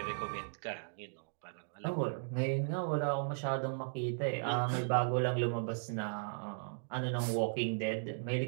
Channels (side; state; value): left; silent; digital silence